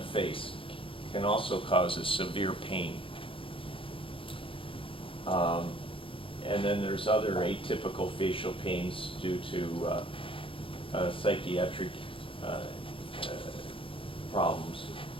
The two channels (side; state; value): right; late; 0.26 ms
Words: can also cause a severe pain. And then there's other atypical facial pains due to psychiatric problems.